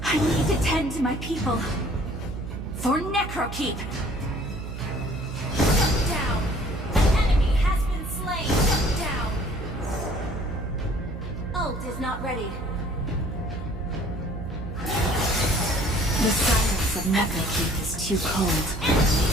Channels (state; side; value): noise; right; hum, 8 dB below the sound